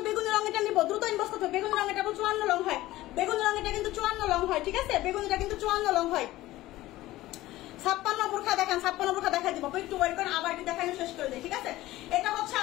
বেগুনি রঙেরটা নিব, দ্রুত ইনবক্স করতে। বেগুনি রঙেরটা 54 লং হয়, বেগুনি রঙেরটা কিন্তু 54 লং হয়, ঠিক আছে। বেগুনিটা কিন্তু 54 লং হয়। 56 বোরখা দেখেন, 56 বোরখা দেখা দিব, একটু ওয়েট করেন, আবার কি দেখানো শেষ করে দেই, ঠিক আছে। এটা হচ্ছে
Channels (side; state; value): right; quieter; 16.7 dB